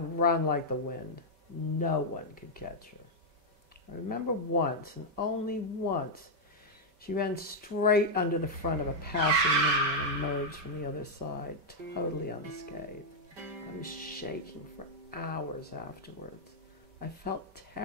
run like the wind. No one could catch her. I remember once, and only once, she ran straight under the front of a passing limousine and emerged from the other side, totally unscathed. I was shaking for hours afterwards. I felt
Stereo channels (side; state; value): left; late; 5.1 ms